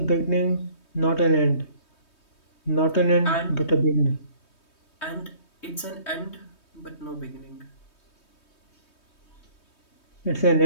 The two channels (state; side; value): late; right; 3.2 ms